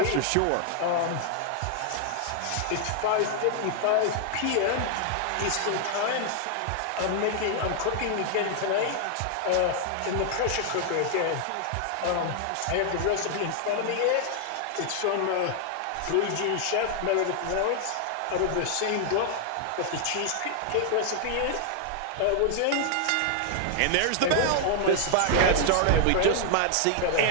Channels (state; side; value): different; both; correlation 0.00